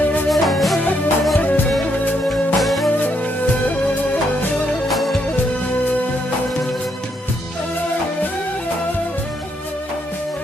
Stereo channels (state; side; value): normal; both; correlation 0.76